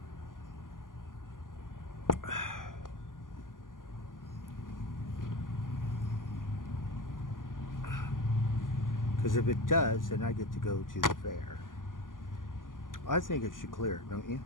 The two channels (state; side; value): late; right; 0.89 ms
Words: Because if it does, then I get to go to the fair. I think it should clear, don't you?